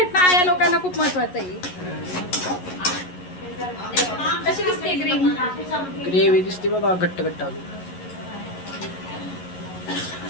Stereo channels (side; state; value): right; late; 11 ms